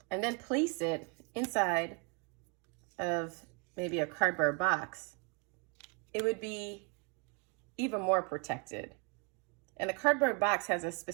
and then place it inside of maybe a cardboard box, it would be even more protected. And the cardboard box has a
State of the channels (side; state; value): left; quieter; 34.1 dB